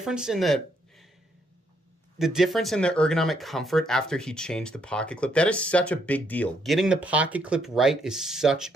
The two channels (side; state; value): both; normal; correlation 0.73